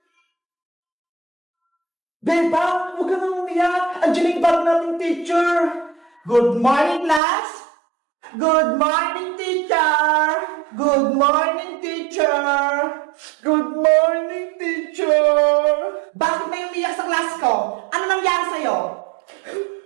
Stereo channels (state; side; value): drops out; left; at 7.2 s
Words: Beba, huwag ka nang umiyak. Andiyan yung bag nating teacher. Good morning, class. Good morning, teacher. Good morning, teacher. Good morning, teacher. Bakit may umiyak sa class ko? Ano nangyari sa'yo?